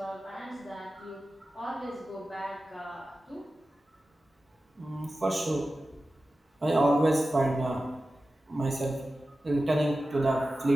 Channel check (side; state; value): both; normal; correlation 0.94